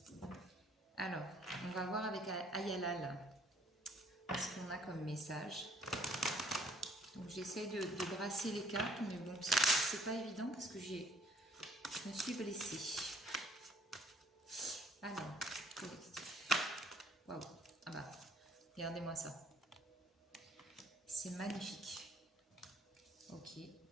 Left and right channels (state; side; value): normal; both; correlation 0.63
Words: Alors, on va voir avec Ayalal ce qu'on a comme message. Donc j'essaye de brasser les cartes, mais bon, c'est pas évident parce que je me suis blessée. Alors, collectif. Waouh, ah bah, regardez-moi ça. C'est magnifique. Ok,